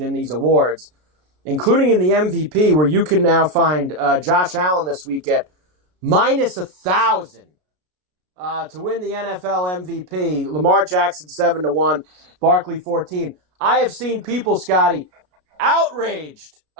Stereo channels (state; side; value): late; left; 33 ms